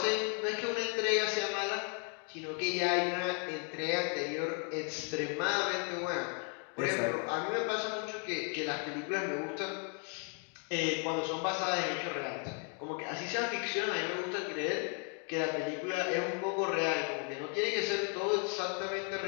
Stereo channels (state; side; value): quieter; right; 39.2 dB